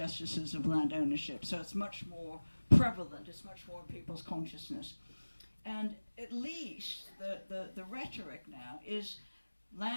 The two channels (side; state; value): both; inverted; correlation -1.00